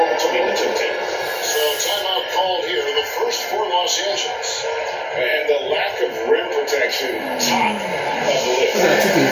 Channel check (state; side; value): identical; both; correlation 1.00